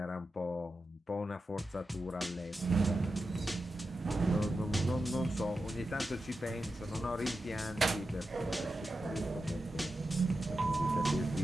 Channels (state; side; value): normal; both; correlation 0.90